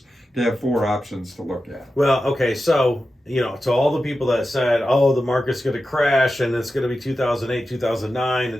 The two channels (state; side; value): normal; both; correlation 0.92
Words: to have 4 options to look at. Well, okay, so, you know, to all the people that said, oh, the market's going to crash and it's going to be 2008, 2009,